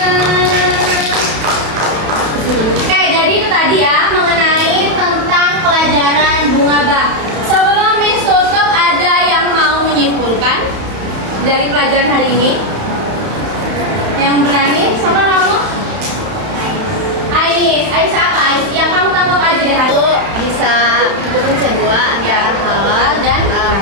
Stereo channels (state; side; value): late; left; 31 ms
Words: Oke, jadi itu tadi ya mengenai tentang pelajaran bunga bank. Sebelum Miss tutup, ada yang mau menyimpulkan dari pelajaran hari ini? Yang berani? Siapa kamu? Ais apa? Ais yang kamu tangkap aja deh hari. Itu bisa hukum kedua antara halal dan